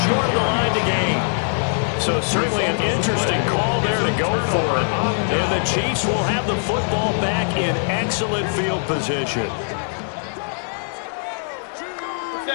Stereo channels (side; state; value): right; silent; 63 dB below the other